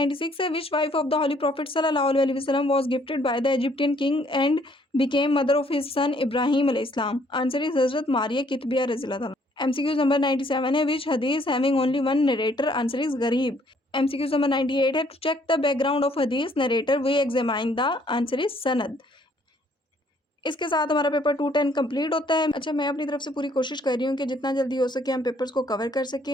है which wife of the holy prophet सल्लल्लाहु अलैहि वसल्लम was gifted by the Egyptian king and became mother of his son इब्राहिम अलैहिस्सलाम? आंसर इज हजरत मारिया कितबिया रज़ी अल्लाह तआला। MCQ नंबर 97 है विच हदीस having only one narrator? Answer is गरीब। MCQ नंबर 98 है to check the background of हदीस narrator we examine the? Answer is सनद। इसके साथ हमारा पेपर 210 कंप्लीट होता है। अच्छा, मैं अपनी तरफ से पूरी कोशिश कर रही हूँ कि जितना जल्दी हो सके हम पेपर्स को कवर कर सकें।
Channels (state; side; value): normal; both; correlation 0.64